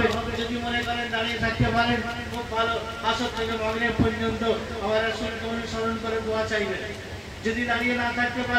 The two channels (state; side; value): identical; both; correlation 1.00